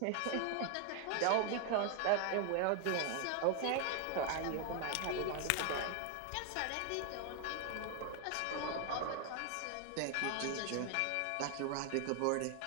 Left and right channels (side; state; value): both; different; correlation 0.00